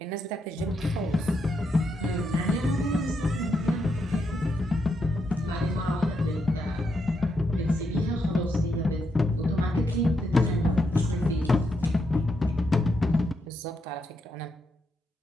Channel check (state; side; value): normal; both; correlation 0.81